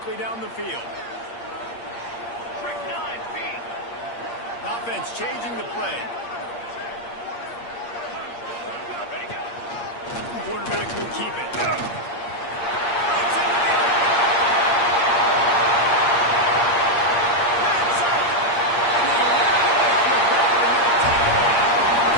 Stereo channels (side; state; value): right; late; 8.6 ms